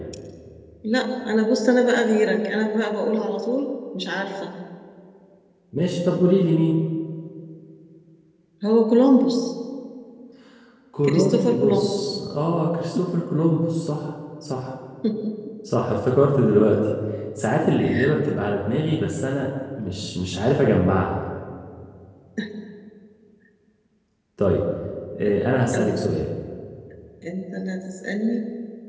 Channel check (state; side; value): identical; both; correlation 1.00